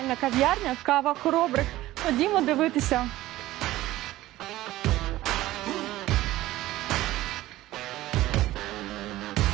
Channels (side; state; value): left; quieter; 16.1 dB